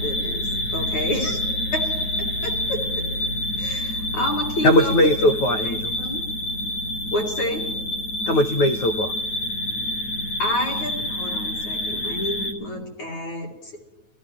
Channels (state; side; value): late; right; 9.3 ms